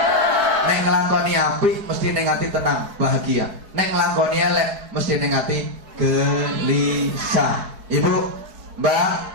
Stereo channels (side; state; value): left; late; 4.7 ms